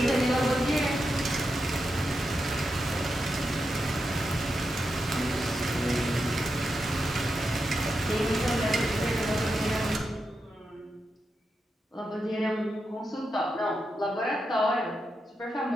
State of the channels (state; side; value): normal; both; correlation 0.87